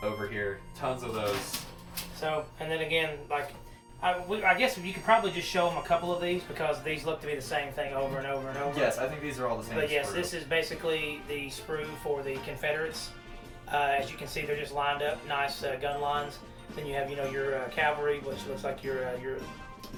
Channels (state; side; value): identical; both; correlation 1.00